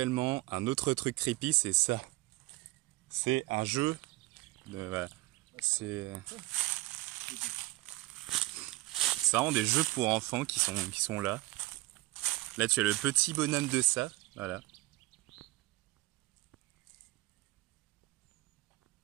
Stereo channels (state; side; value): quieter; left; 20.6 dB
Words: un autre truc creepy, c'est ça. C'est un jeu. Voilà. C'est vraiment des jeux pour enfants qui sont là. Là, tu as le petit bonhomme de ça. Voilà.